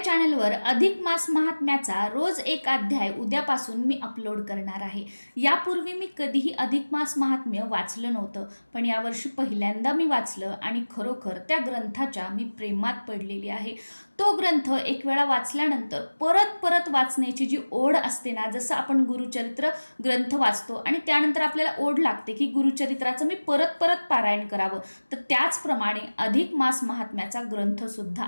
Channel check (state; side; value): inverted; both; correlation -1.00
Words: चॅनलवर अधिक मास महात्म्याचा रोज एक अध्याय उद्यापासून मी अपलोड करणार आहे. यापूर्वी मी कधीही अधिक मास महात्म्य वाचलं नव्हतं, पण यावर्षी पहिल्यांदा मी वाचलं आणि खरोखर त्या ग्रंथाच्या मी प्रेमात पडलेली आहे. तो ग्रंथ एक वेळा वाचल्यानंतर परत परत वाचण्याची जी ओढ असते ना, जसं आपण गुरुचरित्र ग्रंथ वाचतो आणि त्यानंतर आपल्याला ओढ लागते की गुरुचरित्राचं मी परत परत पारायण करावं, तर त्याचप्रमाणे अधिक मास महात्म्याचा ग्रंथ सुद्धा